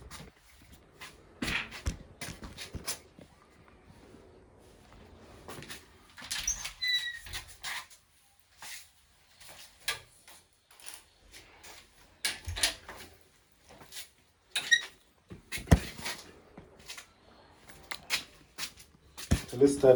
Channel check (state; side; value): identical; both; correlation 1.00